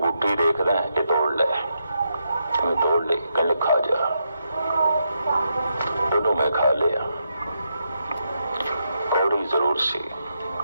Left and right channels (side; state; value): both; inverted; correlation -0.82